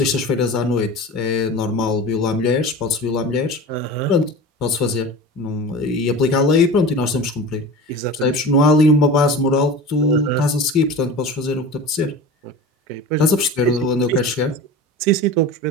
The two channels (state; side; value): normal; both; correlation 0.33